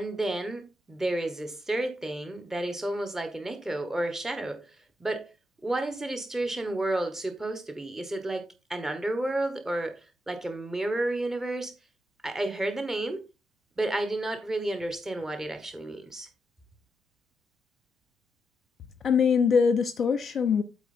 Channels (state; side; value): normal; both; correlation 0.83